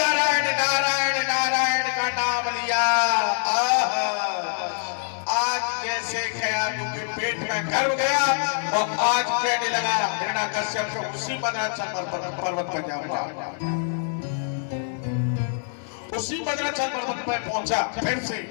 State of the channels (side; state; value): right; silent; 57 dB below the other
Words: नारायण नारायण का नाम लिया, आज जैसे कयादू के पेट में गर्भ गया और आज कहने लगा हिरण्यकश्यप को उसी मद्राचल पर्वत पर जाऊंगा। उसी मद्राचल पर्वत पर पहुंचा फिर से,